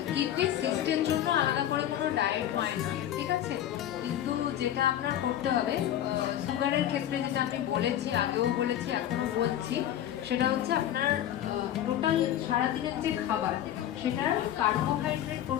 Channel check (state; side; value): quieter; right; 11.5 dB